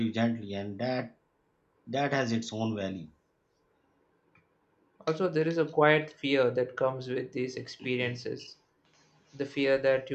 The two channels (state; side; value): identical; both; correlation 1.00